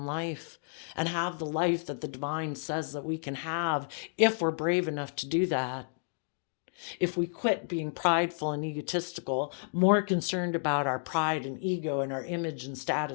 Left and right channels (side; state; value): right; silent; digital silence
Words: life and have the life that the divine says that we can have if we're brave enough to do that. If we quit being prideful and egotistical, more concerned about our pride and ego and our image and